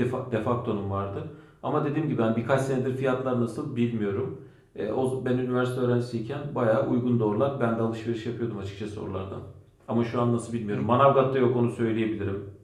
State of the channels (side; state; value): both; identical; correlation 1.00